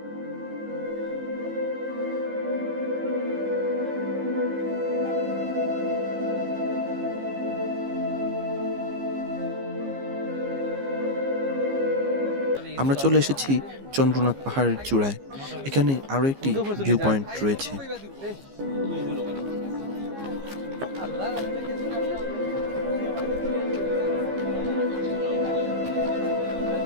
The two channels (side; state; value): left; late; 15 ms